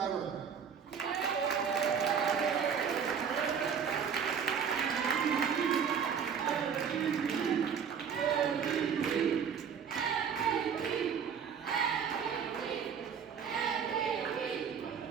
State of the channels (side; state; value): left; quieter; 7.1 dB